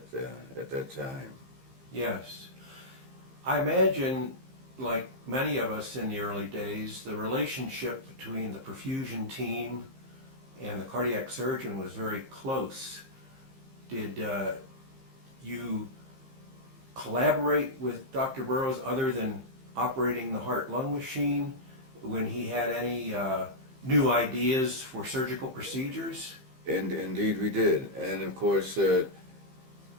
that time. Yes. I imagine, like many of us in the early days, the relationship between the perfusion team and the cardiac surgeon was very close. Did you collaborate with Dr. Burroughs other than operating the heart-lung machine when he had any new ideas for surgical procedures? And indeed we did. And of course, as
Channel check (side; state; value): left; late; 15 ms